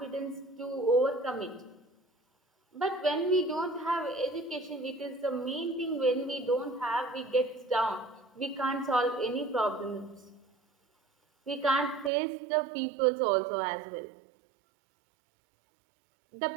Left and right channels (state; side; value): drops out; left; at 12.1 s